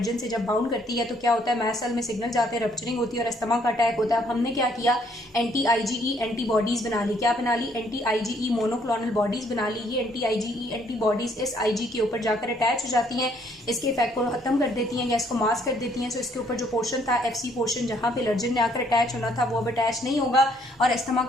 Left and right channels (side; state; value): both; normal; correlation 0.66